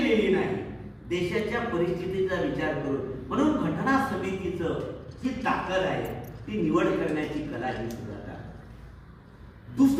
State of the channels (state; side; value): identical; both; correlation 1.00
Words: नाही, देशाच्या परिस्थितीचा विचार करून. म्हणून घटना समितीचं जी ताकद आहे ती निवड करण्याची कला ही सुद्धा.